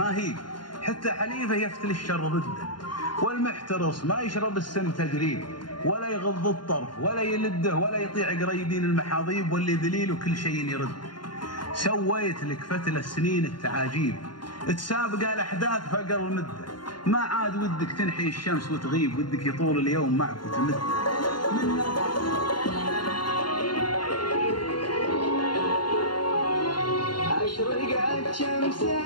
هي، حتى حليفه يفتل الشر ضده. والمحترص ما يشرب السم تجريب، ولا يغض الطرف ولا يلده، ولا يطيع قريبين المحاضيب. واللي ذليل وكل شيء يرد. سويت لك فتل السنين التعاجيب، تسابق الاحداث فقر المده. ما عاد ودك تنحي الشمس وتغيب، ودك يطول اليوم معك وتمد. أشرقت شمس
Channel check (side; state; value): right; late; 0.71 ms